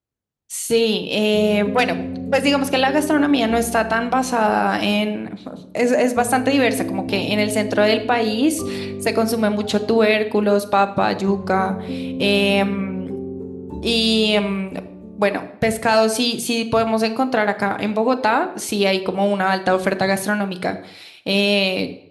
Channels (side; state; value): both; identical; correlation 1.00